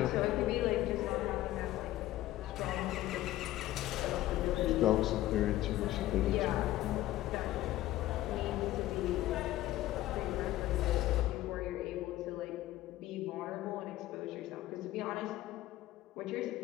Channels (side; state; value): right; quieter; 15.3 dB